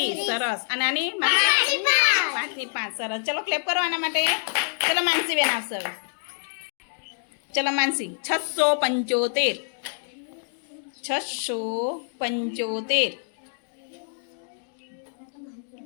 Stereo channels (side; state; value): right; silent; digital silence